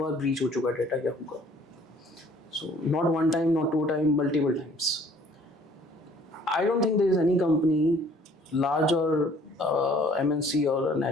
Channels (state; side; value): normal; both; correlation 0.56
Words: बार ब्रीच हो चुका है डेटा याहू का. So not one time, not two time, multiple times. I don't think there is any company large और एमएनसी और